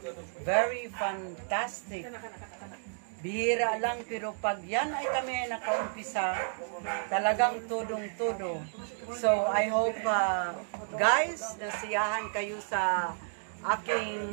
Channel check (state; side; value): silent; left; digital silence